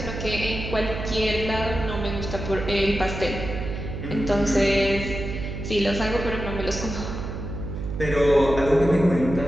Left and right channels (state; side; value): noise; right; hum, 6 dB below the sound